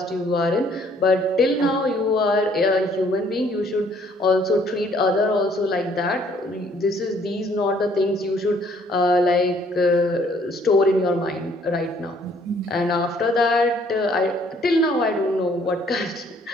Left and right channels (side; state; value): both; normal; correlation 0.62